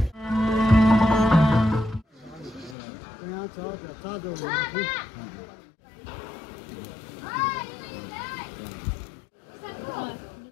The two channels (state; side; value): drops out; right; at 2.8 s